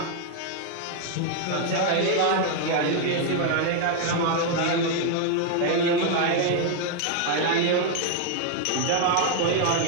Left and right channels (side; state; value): both; different; correlation 0.00